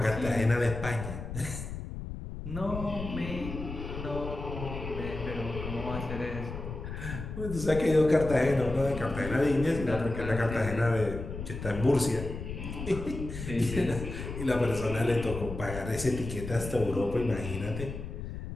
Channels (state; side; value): noise; left; rumble, 8 dB below the sound